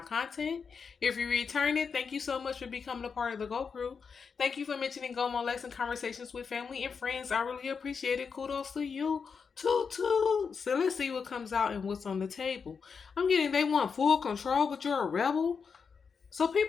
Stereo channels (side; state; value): right; quieter; 5.7 dB